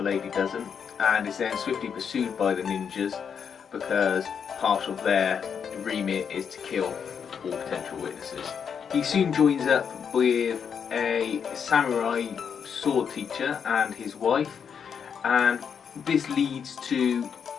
lady doesn't, and is then swiftly pursued by the ninjas because part of their remit is to kill all potential witnesses. He soon joins up with a samurai sword teacher and his wife, and this leads to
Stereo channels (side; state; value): right; quieter; 7.1 dB